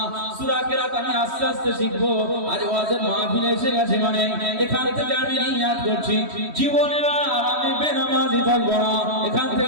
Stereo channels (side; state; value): left; late; 3.1 ms